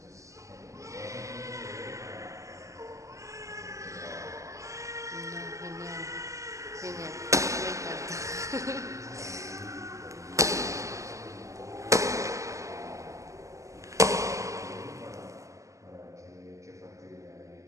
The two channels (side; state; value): left; late; 0.16 ms